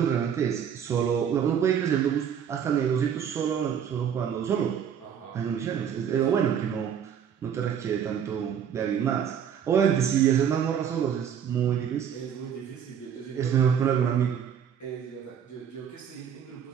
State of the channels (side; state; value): left; quieter; 8.3 dB